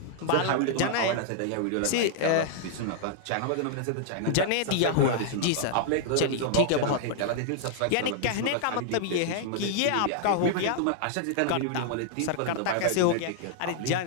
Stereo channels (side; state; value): both; different; correlation -0.01